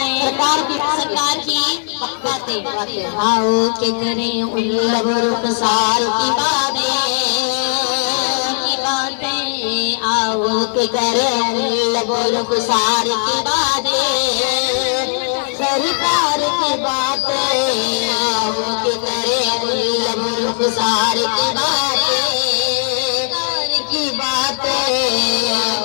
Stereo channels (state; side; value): silent; right; digital silence